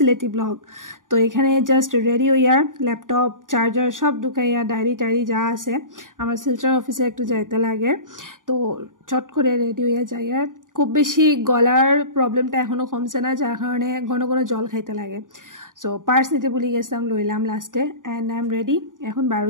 ব্লগ। তো এখানে জাস্ট রেডি হইয়ার ল্যাপটপ চার্জার সব ঢুকাইয়া ডায়েরি টায়েরি যা আছে, আমার শিলচর অফিসে একটু যাইতে লাগে। তো চট করে রেডি হইয়া যাইয়ার খুব বেশি গলার প্রবলেমটা এখনও কমছে না, যার কারণে ঘন ঘন জল খাইতে লাগে। সো পার্স নিতে ভুলে গেছিলাম, লইলাম লাস্টে, অ্যান্ড আই এম রেডি। এখন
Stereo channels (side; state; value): left; late; 0.89 ms